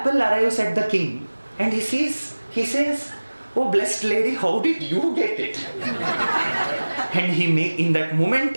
arrives at the king, and he says, oh blessed lady, how did you get it? And in that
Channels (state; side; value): inverted; both; correlation -1.00